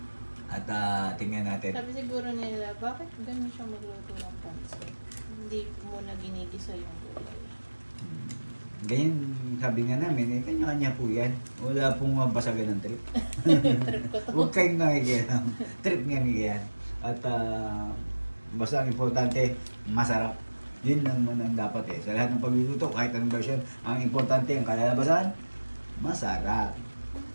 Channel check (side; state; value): both; inverted; correlation -1.00